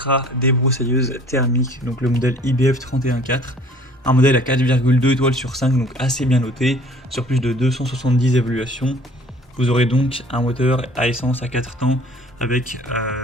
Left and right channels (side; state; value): both; normal; correlation 0.52